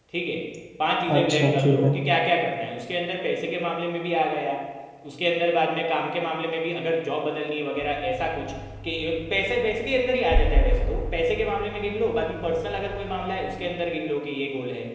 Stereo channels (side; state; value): both; identical; correlation 1.00